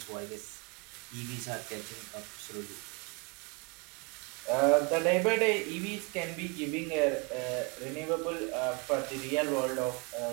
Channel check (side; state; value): left; quieter; 31.2 dB